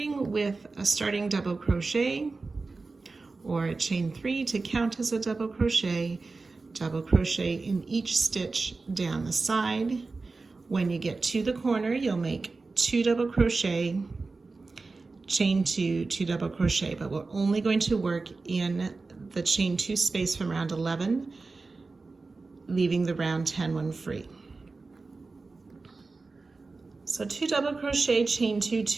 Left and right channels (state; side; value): quieter; left; 3.8 dB